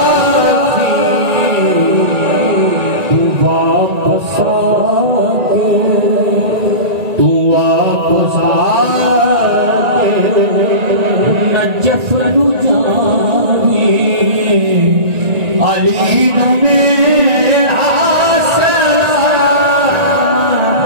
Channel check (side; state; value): left; late; 1.9 ms